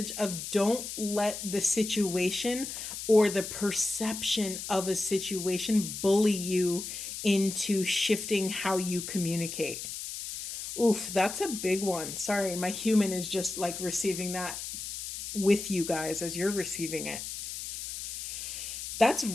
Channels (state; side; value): noise; left; hiss, 7 dB below the sound